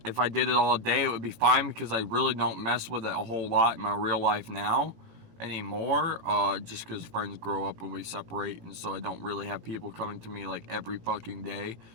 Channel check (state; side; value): late; left; 18 ms